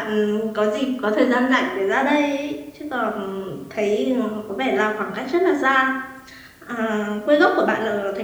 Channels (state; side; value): identical; both; correlation 1.00